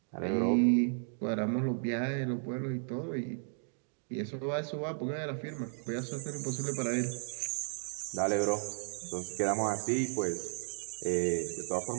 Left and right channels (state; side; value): silent; left; digital silence